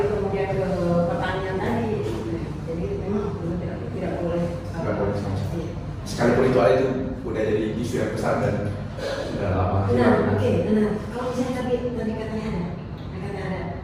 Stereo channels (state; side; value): identical; both; correlation 1.00